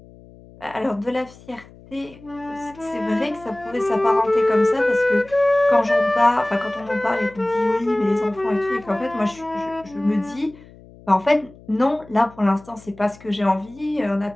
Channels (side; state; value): left; noise; hum, 22 dB below the sound